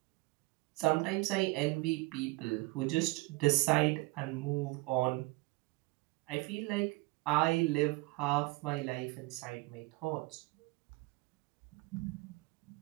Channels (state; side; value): quieter; left; 23.5 dB